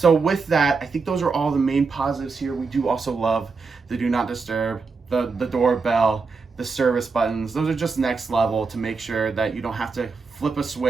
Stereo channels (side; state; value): left; quieter; 4.6 dB